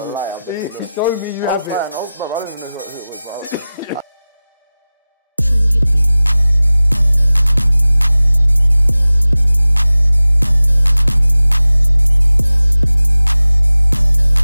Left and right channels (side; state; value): both; inverted; correlation -0.97